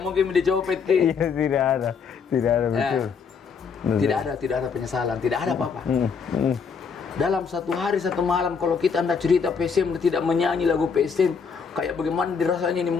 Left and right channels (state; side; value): quieter; right; 5.9 dB